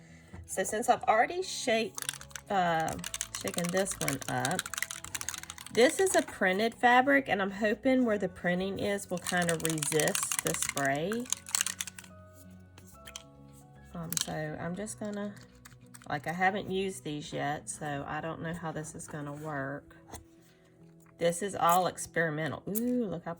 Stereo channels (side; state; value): both; identical; correlation 1.00